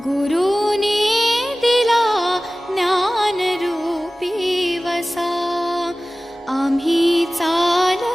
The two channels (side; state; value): both; normal; correlation 0.97